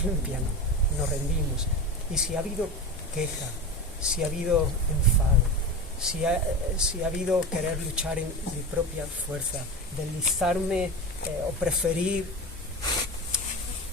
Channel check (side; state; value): both; normal; correlation 0.26